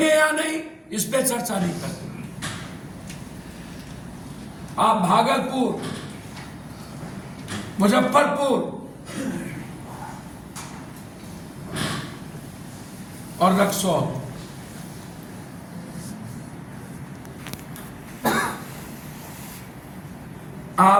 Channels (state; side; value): identical; both; correlation 1.00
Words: या नहीं, इस पे चर्चा नहीं करते। आप भागलपुर, मुजफ्फरपुर और रक्सौल,